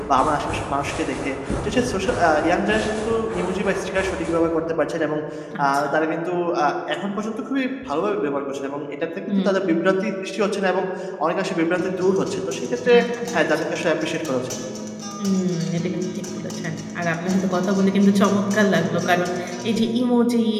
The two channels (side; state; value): both; identical; correlation 1.00